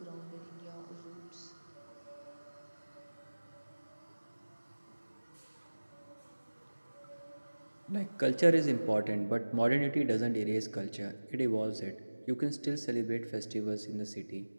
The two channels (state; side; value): inverted; both; correlation -1.00